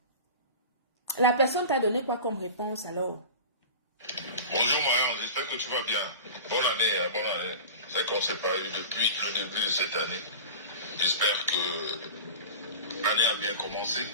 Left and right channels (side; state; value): both; inverted; correlation -0.33